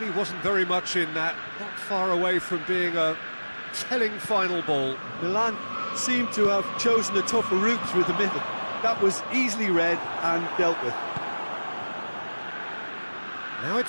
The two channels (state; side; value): inverted; both; correlation -1.00